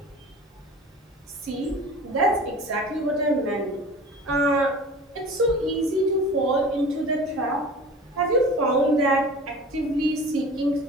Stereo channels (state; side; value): normal; both; correlation 0.39